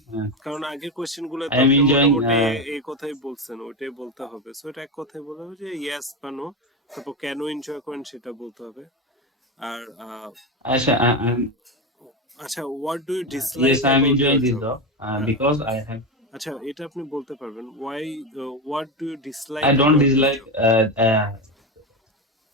কারণ আগের কোয়েশ্চেন গুলো I তো am আপনি enjoying, মোটামুটি এই কথাই বলছেন, ওইটাই বলতে হবে। সো এটা এক কথাই বলতে হবে যে ইয়েস বা নো, তারপর কেন এনজয় করেন সেটা bলতে হবে। আর Asha, আচ্ছা, what do you dislike yes, I am about enjoying your this job? job, because I have, আচ্ছা, এটা আপনি বলতে পারবেন, why, what do you dislike I don't about your dislike, job?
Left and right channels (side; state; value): both; normal; correlation 0.15